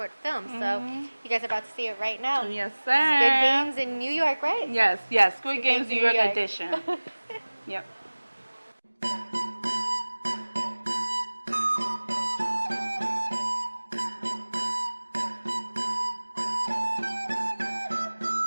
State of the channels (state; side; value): inverted; both; correlation -1.00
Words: film. So you guys are about to see it right now. Yes, sir. Squid Games in New York, right? Yes, Squid Games New York edition. Yep.